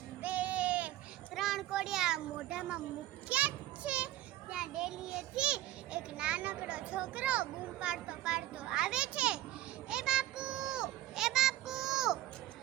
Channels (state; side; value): quieter; left; 14.4 dB